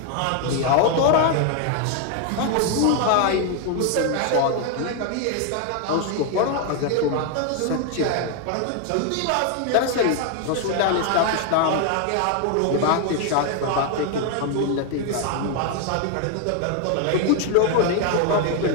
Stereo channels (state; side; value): different; both; correlation 0.01